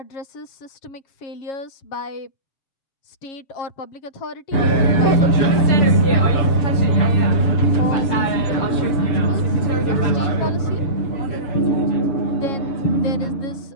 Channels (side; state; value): right; late; 6.9 ms